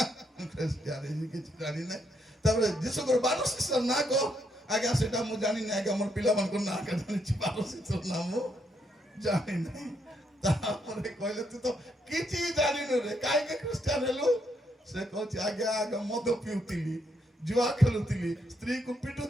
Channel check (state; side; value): normal; both; correlation 0.76